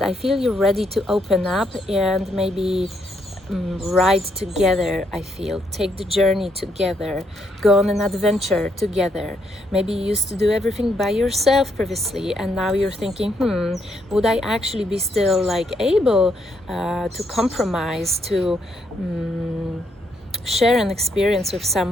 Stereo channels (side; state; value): both; normal; correlation 0.75